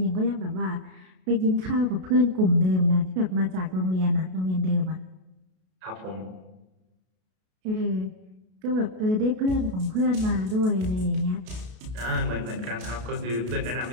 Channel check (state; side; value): late; left; 32 ms